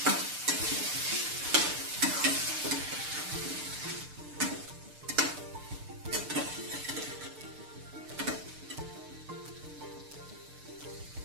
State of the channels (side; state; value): left; late; 6.7 ms